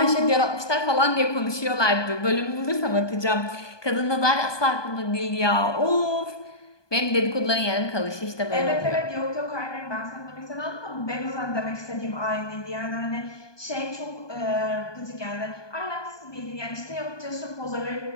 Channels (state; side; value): late; right; 1.2 ms